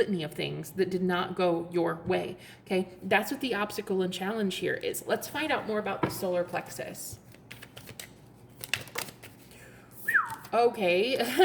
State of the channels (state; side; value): identical; both; correlation 1.00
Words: of things that did not go your way. Okay, that's what the obstacle and challenge here is. Let's find out more about the solar plexus. Okay,